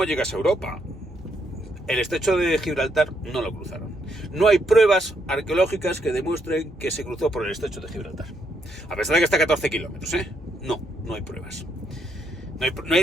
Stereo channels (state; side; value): normal; both; correlation 0.75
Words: llegas a Europa? El estrecho de Gibraltar no lo cruzaron. No hay pruebas arqueológicas que demuestren que se cruzó por el estrecho de Gibraltar. A pesar de que está a 14 kilómetros, No hay pruebas. No